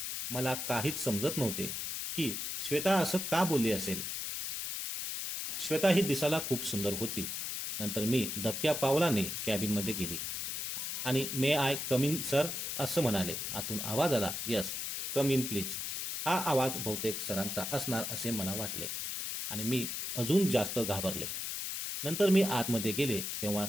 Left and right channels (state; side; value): noise; left; hiss, 3 dB below the sound